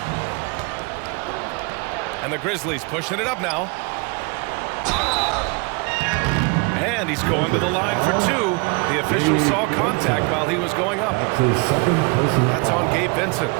And the Grizzlies pushing it up now. And he's going to the line for 2. The official saw contact while he was going up. That's on Gabe Vincent.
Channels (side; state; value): left; quieter; 30.5 dB